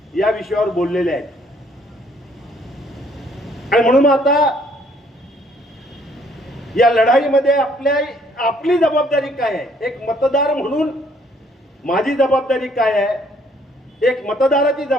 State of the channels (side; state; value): both; normal; correlation 0.64